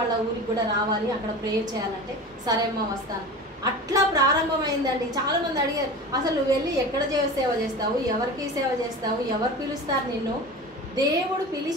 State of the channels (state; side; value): normal; both; correlation 0.33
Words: వాళ్ళ ఊరికి కూడా రావాలి, అక్కడ ప్రేయర్ చేయాలంటే సరే అమ్మ వస్తాను. అట్లా ప్రారంభమైందండి. చాలా మంది అడిగారు, అసలు నువ్వు వెళ్ళి ఎక్కడ సేవ చేస్తావు, ఎవరికి సేవ చేస్తావు, ఎవరు పిలుస్తారు నిన్ను? దేవుడు